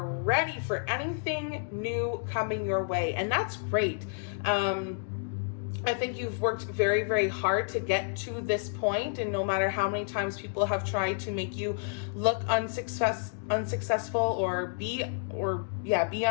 ready for anything new coming your way, and that's great. I think you've worked very, very hard to get to this point, and no matter how many times people have tried to make you look unsuccessful or be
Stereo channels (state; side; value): silent; right; digital silence